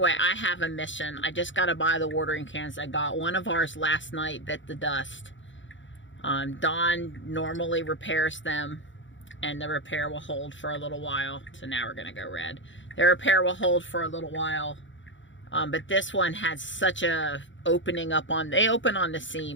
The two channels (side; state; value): right; late; 0.55 ms